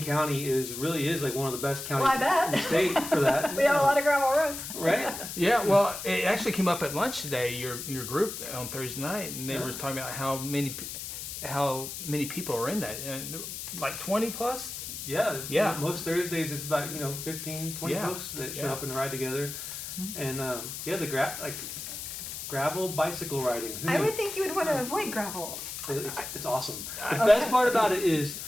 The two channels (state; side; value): noise; left; hiss, 7 dB below the sound